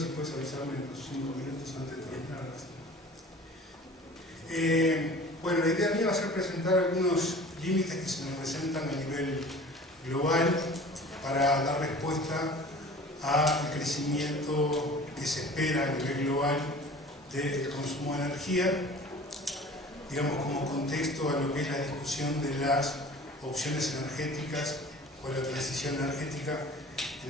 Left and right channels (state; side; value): normal; both; correlation 0.44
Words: puedes avisarme en los 5 minutos antes de terminar. Bueno, la idea mía va a ser presentar algunos límites que se nos presentan a nivel global para dar respuesta al crecimiento que se espera a nivel global del consumo de energía, digamos como contexto a lo que es la discusión de las opciones energéticas o la transición energética